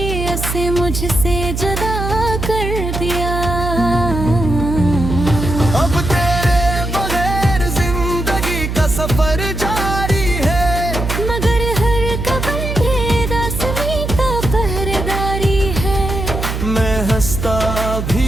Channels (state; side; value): noise; right; hum, 3 dB below the sound